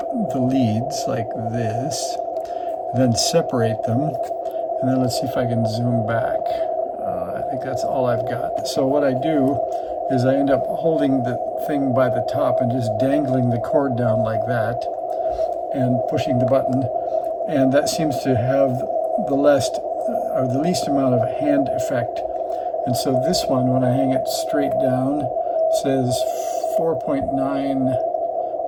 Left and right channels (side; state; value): both; identical; correlation 1.00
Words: the leads like this, then separate them, and then let's see if I can zoom back. I think that's all I've got. So what I do is I end up holding the thing by the top and just dangling the cord down like that and pushing the button, and that seems to have the least amount of hand effect. And so this one, when I hang it straight down, says 4.9